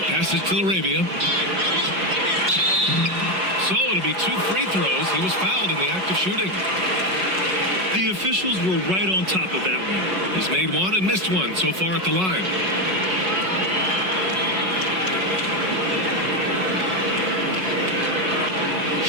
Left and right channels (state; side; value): late; left; 5.4 ms